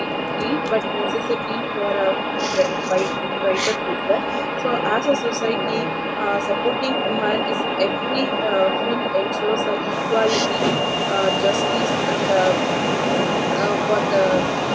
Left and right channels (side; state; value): both; identical; correlation 1.00